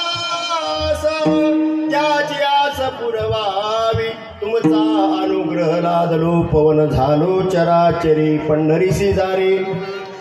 ज्याची आस पुरवावी, तुमचा अनुग्रह लादलो पवन झालो चराचरी, पंढरीसी जारी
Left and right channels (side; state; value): both; identical; correlation 1.00